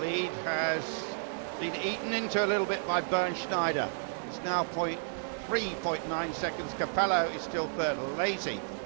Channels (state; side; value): silent; left; digital silence